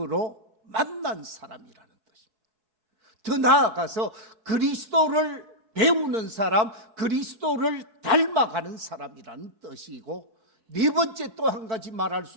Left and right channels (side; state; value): left; late; 4.7 ms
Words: 만난 사람이라는 뜻입니다. 더 나아가서 그리스도를 배우는 사람, 그리스도를 닮아가는 사람이라는 뜻이고, 네 번째 또 한 가지 말할